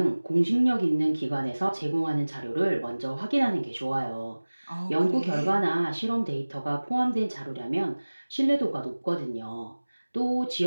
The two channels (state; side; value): inverted; both; correlation -1.00